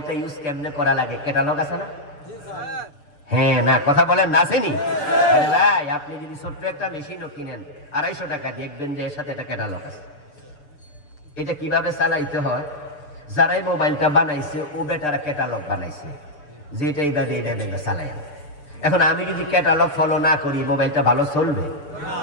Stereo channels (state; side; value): late; right; 6.8 ms